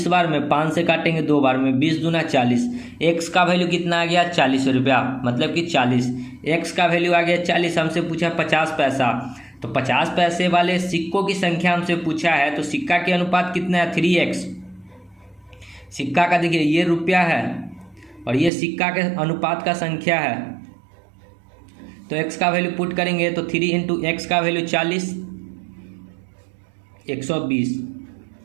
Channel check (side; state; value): left; drops out; at 18.5 s